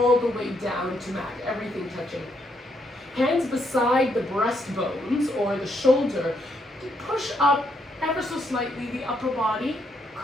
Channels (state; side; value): normal; both; correlation 0.75